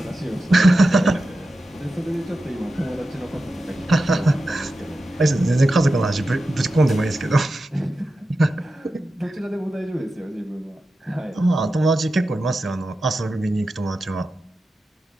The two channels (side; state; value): both; normal; correlation 0.92